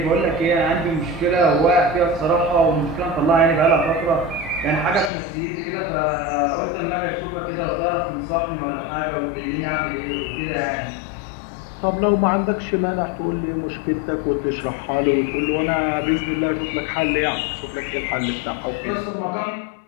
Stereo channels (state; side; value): drops out; right; at 5.1 s